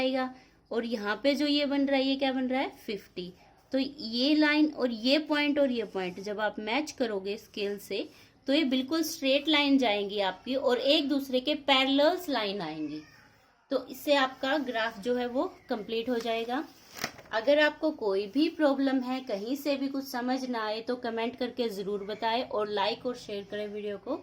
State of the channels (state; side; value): identical; both; correlation 1.00